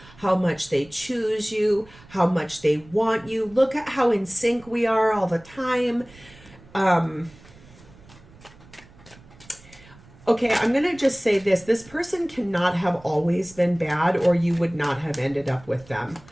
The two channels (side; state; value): right; noise; rumble, 24 dB below the sound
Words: how much they choose you, how much they want you. Look at how in sync we are all the time. Okay, I'm going to just say this. This person cannot have always been bad, or you would not have ended up with them.